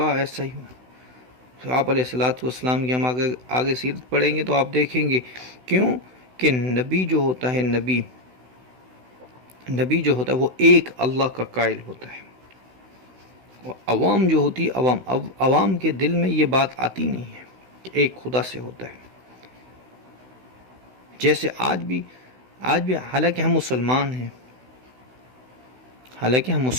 ایسا ہی ہو. آپ علیہ السلام کی ہم آگے سیرت پڑھیں گے تو آپ دیکھیں گے کیوں کہ نبی جو ہوتا ہے, نبی جو ہوتا ہے وہ ایک اللہ کا قائل ہوتا ہے. عوام جو ہوتی ہے, عوام کے دل میں یہ بات آتی نہیں ہے کہ ایک خدا سے ہوتا ہے. جیسے آج بھی آج بھی حالانکہ ہم مسلمان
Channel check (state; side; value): late; left; 16 ms